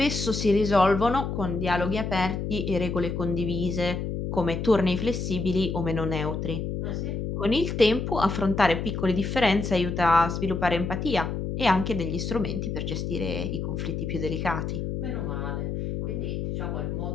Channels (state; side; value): noise; left; hum, 3 dB below the sound